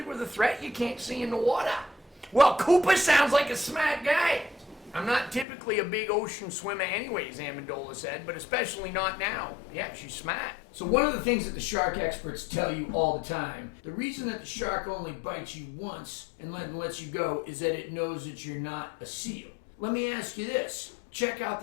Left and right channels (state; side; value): drops out; right; at 5.5 s